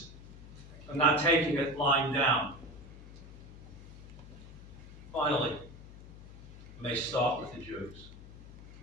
for not taking it lying down. Finally, it may start with the Jews.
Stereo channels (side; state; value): left; noise; hum, 16 dB below the sound